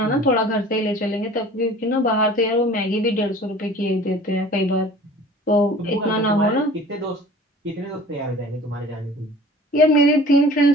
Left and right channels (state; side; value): normal; both; correlation 0.45